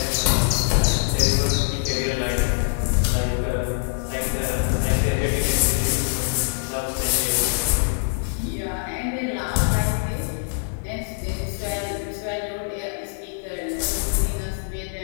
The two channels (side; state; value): right; silent; digital silence